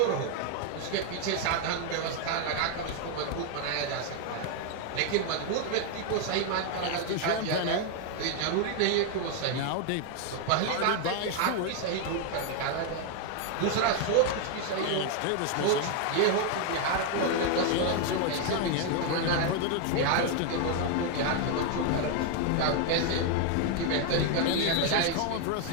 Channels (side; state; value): both; different; correlation 0.01